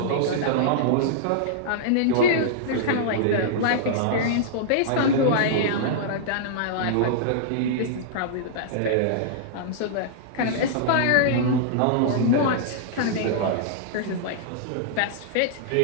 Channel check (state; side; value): different; both; correlation -0.02